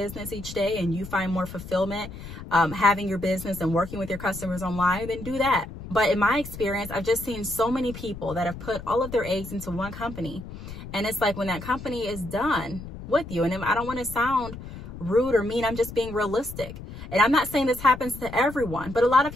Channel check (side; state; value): left; noise; rumble, 12 dB below the sound